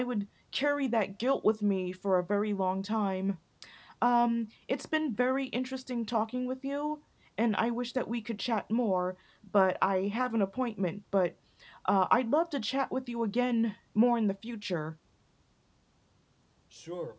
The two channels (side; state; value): both; identical; correlation 1.00